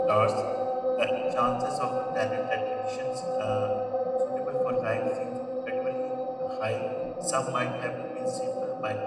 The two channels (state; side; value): identical; both; correlation 1.00